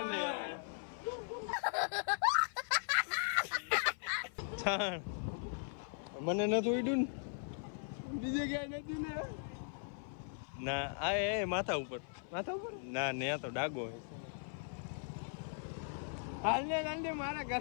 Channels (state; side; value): silent; right; 52 dB below the other